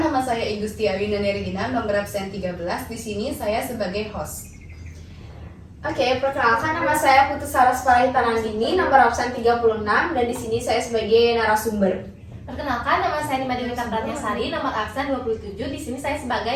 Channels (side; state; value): both; identical; correlation 1.00